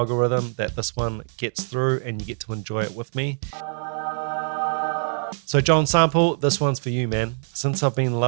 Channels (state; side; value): silent; left; digital silence